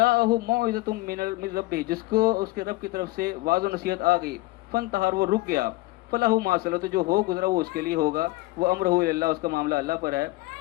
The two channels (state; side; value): quieter; right; 20.2 dB